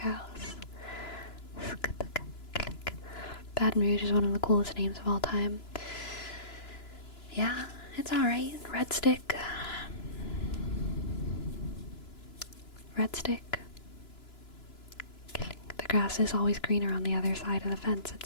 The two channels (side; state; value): right; late; 2.9 ms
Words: Baton Rouge is one of the coolest names of all time. Yeah, it's alright. Red stick. Red stick. The grass is always greener on the other side of the fence,